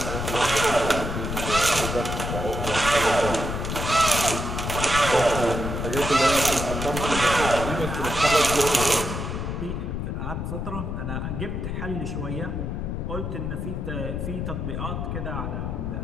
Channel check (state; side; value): noise; left; rumble, 3 dB below the sound